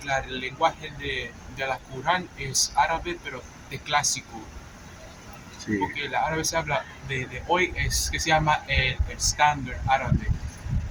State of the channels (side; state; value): both; identical; correlation 1.00